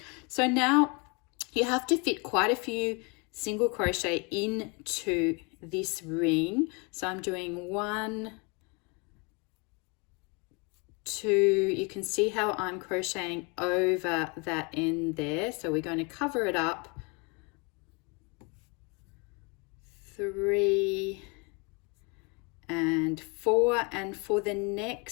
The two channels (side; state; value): right; quieter; 31.0 dB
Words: So now you have to fit quite a few single crochet into this ring. So I'm doing 1, 2, you can see how I'm crocheting over that end there. So we're going to cover it up. 3 and 4, and for the